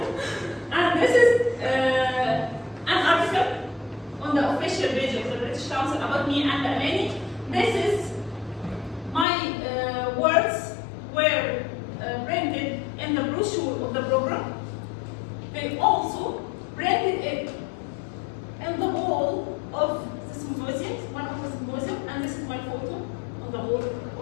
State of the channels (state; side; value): drops out; right; at 9.2 s